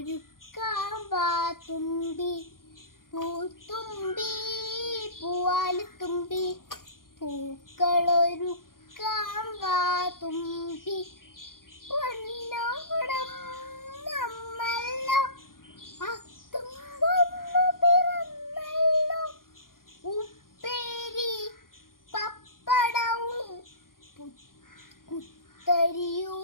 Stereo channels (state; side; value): late; right; 0.91 ms